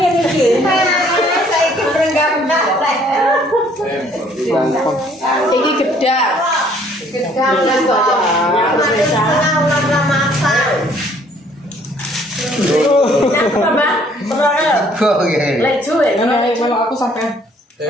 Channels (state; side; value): normal; both; correlation 0.61